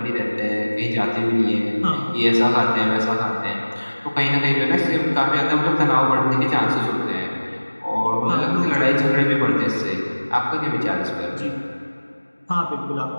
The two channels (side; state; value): both; inverted; correlation -1.00